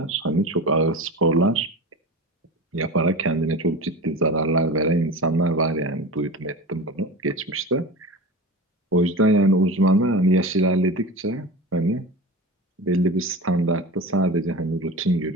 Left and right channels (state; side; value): normal; both; correlation 0.30